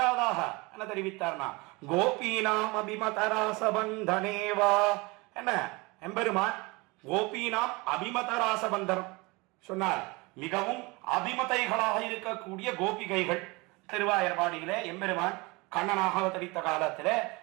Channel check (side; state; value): left; quieter; 25.3 dB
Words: என்ன தெரிவித்தார்னா, கோபீனாம் அபிமதராசபந்தனேவா என்ன, எம்பெருமான் கோபீனாம் அபிமதராசபந்தனம் சொன்னார். மிகவும் அபிமதைகளாக இருக்கக்கூடிய கோபிகைகள் திருவாயர்பாடியிலே எம்பெருமான் கண்ணனாக அவதரித்த காலத்திலே